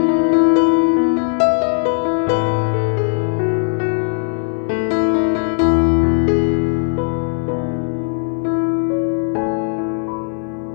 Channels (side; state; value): right; silent; digital silence